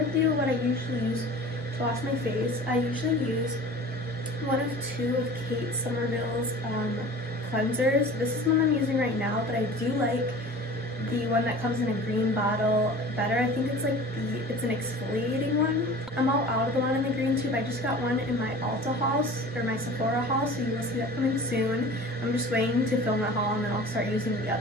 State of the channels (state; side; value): normal; both; correlation 0.40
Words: you what I usually use to wash my face. I usually use one of 2 of Kate Somerville's cleansers. This is the one I'm using right now, but I do like the one that comes in a green bottle better. I think it's like it's an exfoliating one. I'm all out of the one in the green tube. I just got one in my Ulta haul, or my Sephora haul, so you will see that coming soon. I'm just waiting to film that haul and then I'll start using the